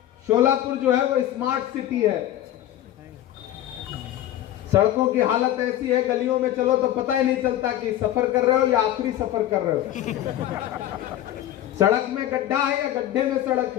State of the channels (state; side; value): quieter; right; 12.8 dB